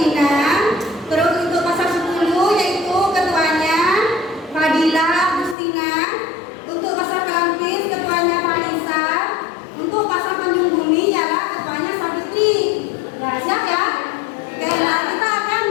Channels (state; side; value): drops out; right; at 5.6 s